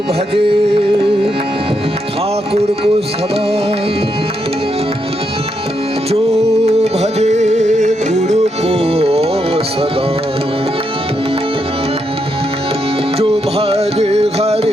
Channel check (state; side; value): normal; both; correlation 0.80